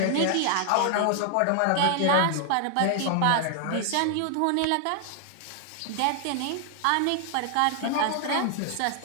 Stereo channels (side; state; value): both; different; correlation 0.00